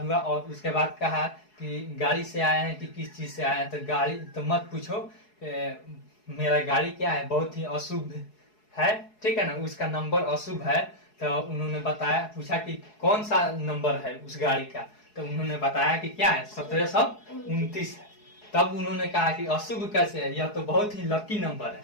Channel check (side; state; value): right; late; 4.7 ms